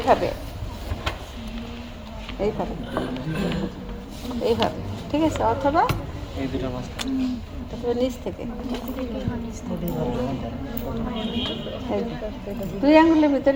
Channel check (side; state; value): both; identical; correlation 1.00